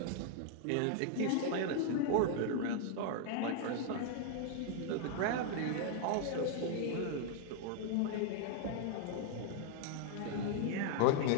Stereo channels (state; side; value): different; both; correlation 0.00